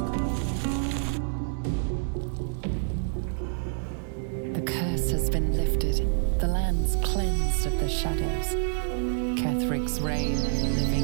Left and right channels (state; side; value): silent; left; 60 dB below the other